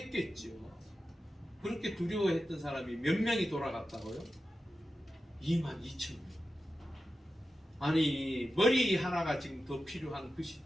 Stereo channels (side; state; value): both; normal; correlation 0.92